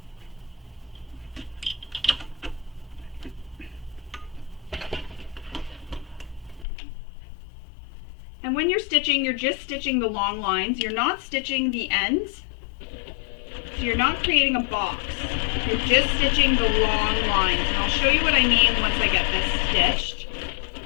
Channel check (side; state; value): right; drops out; at 6.7 s